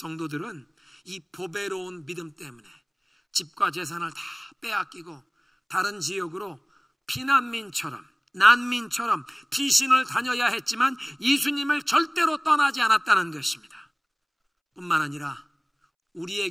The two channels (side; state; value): both; identical; correlation 1.00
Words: 이 보배로운 믿음 때문에 집과 재산을 다 빼앗기고 다른 지역으로 피난민처럼, 난민처럼 피신을 다녀야 했지만 예수님을 절대로 떠나지 않았다는 것입니다. 뿐만 아니라